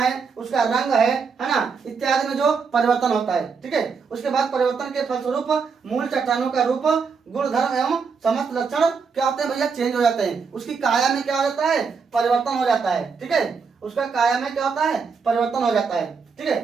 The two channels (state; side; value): quieter; left; 5.5 dB